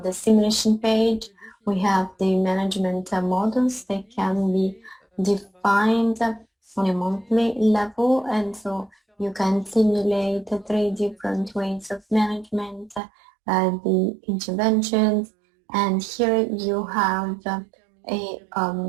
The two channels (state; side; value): drops out; left; at 13.0 s